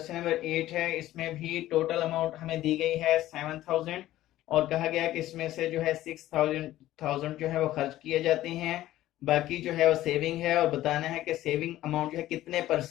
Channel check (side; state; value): right; quieter; 14.7 dB